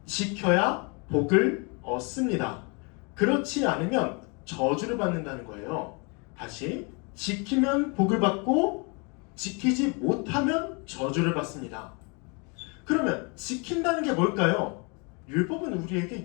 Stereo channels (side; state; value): right; quieter; 32.8 dB